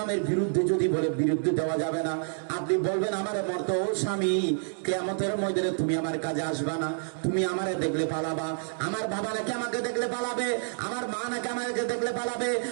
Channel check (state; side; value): silent; left; digital silence